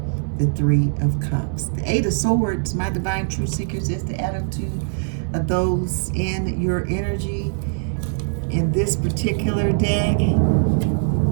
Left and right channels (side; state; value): left; silent; 64 dB below the other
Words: The Three of Cups. The Eight of Swords, my divine truth seekers, is the attitude of those in your energy in this particular deck.